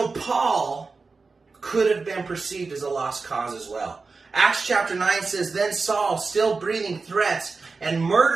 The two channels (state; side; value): quieter; left; 4.2 dB